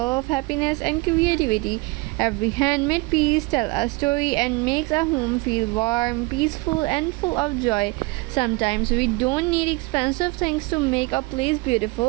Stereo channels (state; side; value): quieter; left; 24.2 dB